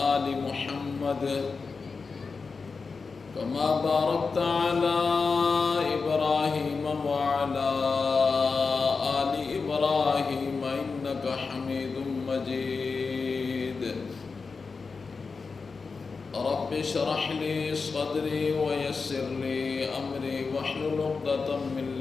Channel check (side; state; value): right; quieter; 4.7 dB